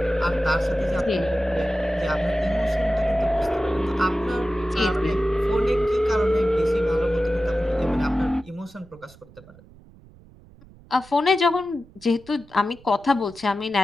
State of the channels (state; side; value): noise; right; rumble, 24 dB below the sound